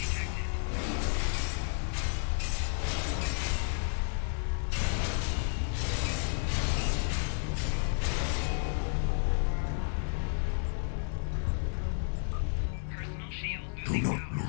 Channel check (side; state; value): right; silent; 57 dB below the other